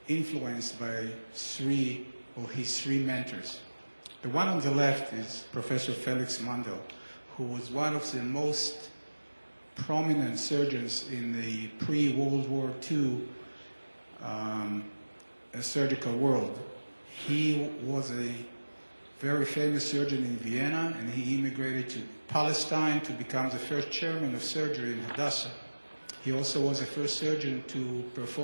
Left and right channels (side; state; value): both; inverted; correlation -1.00